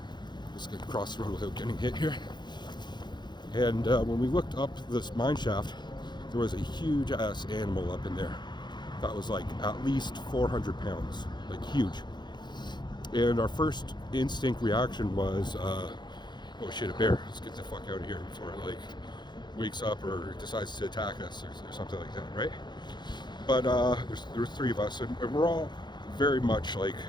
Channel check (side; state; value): right; late; 0.21 ms